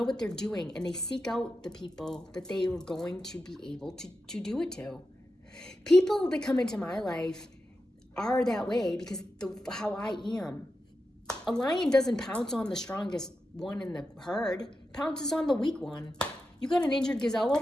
what they're doing, and they seek out the people that they are going to be able to do it to. People that come into my life are that way because how I am. A lion doesn't pounce on the strongest one in the herd, pounces on the weak one. You got an injured gazelle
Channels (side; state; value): both; normal; correlation 0.89